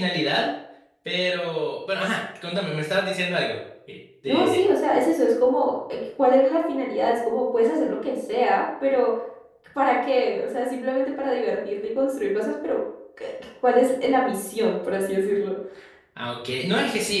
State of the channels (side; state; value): both; identical; correlation 1.00